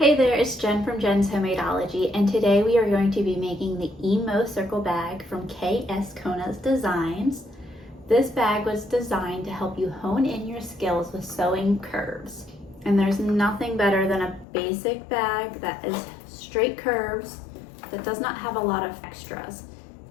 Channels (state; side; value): drops out; right; at 14.5 s